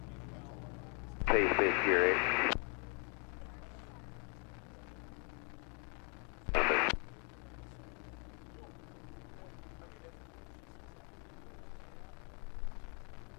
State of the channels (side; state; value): right; quieter; 37.3 dB